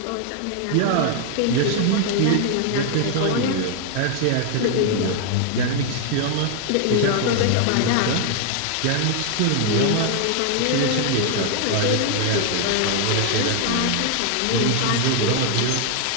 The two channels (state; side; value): different; both; correlation 0.00